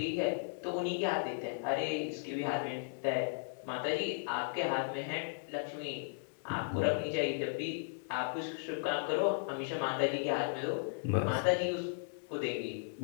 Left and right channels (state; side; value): silent; right; digital silence